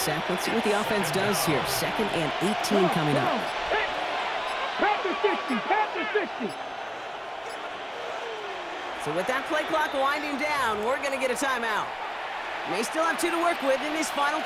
let's see what the offense does here. 2nd and 18 coming up. Panther 60, Panther 60. So with that play clock winding down, we're going to get a timeout. May still have 2 to work with in this final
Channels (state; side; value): identical; both; correlation 1.00